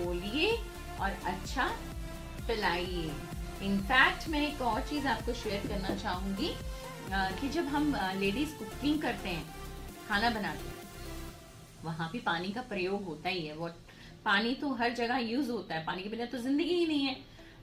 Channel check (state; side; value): identical; both; correlation 1.00